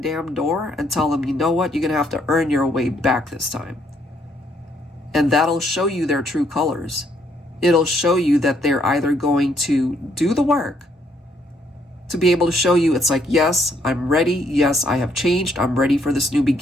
door and tell them, you know what, you're going to have to earn your way back this time. And that'll show you their true colors. It'll show you that they're either going to do the work to be able to show you, it's like, yes, I'm ready. Yes, I have changed. I'm ready for this new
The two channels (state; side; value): normal; both; correlation 0.70